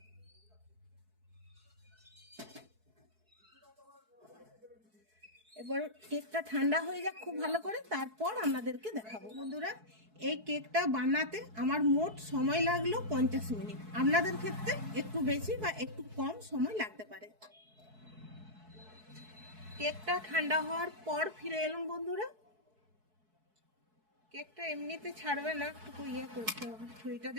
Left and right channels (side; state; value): left; late; 4.6 ms